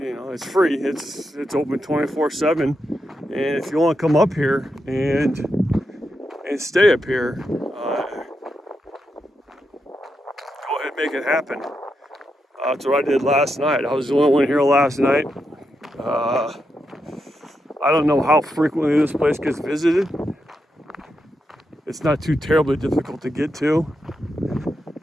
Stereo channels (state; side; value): normal; both; correlation 0.85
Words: free. It's open 24/7. And if you want to come up here and stay up here, go ahead and make it happen. That's what I did last night. I was the only one here last night. I don't know how frequently this place gets visited. It's not too terribly difficult to get to.